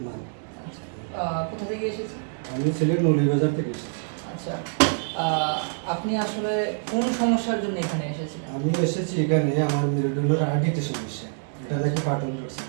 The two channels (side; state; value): left; silent; digital silence